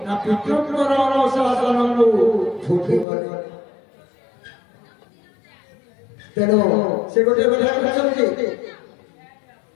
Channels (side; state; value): right; drops out; at 3.1 s